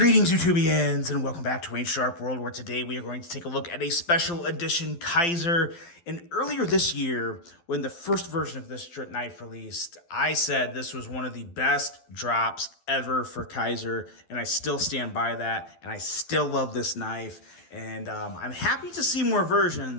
YouTubians, and welcome back to Wayne Sharp World, where today we are going to take a look at a special edition Kizer. And earlier this year, when the first version of this knife released, I said this was one of the best drops ever for Kizer, and I still stand by that, and I still love this knife, and I'm happy to see more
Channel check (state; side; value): late; right; 12 ms